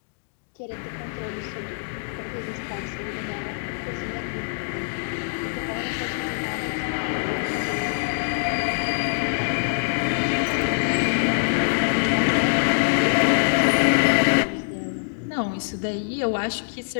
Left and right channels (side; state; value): right; silent; digital silence